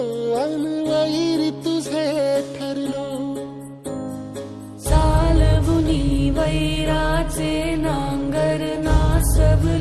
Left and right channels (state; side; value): identical; both; correlation 1.00